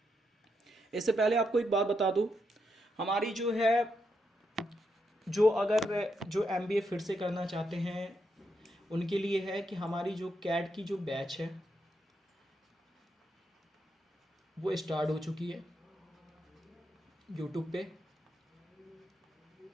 इससे पहले आपको एक बात बता दूँ, हमारी जो है जो एमबीए फिर से करना चाहते हैं उनके लिए है कि हमारी जो कैट की जो बैच है वो स्टार्ट हो चुकी है यूट्यूब पे।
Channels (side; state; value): both; normal; correlation 0.81